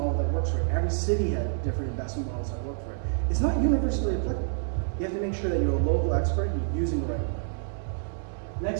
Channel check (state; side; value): silent; left; 59 dB below the other